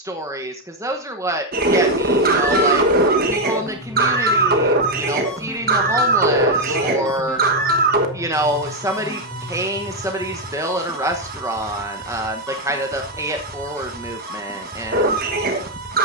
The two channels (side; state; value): both; normal; correlation 0.05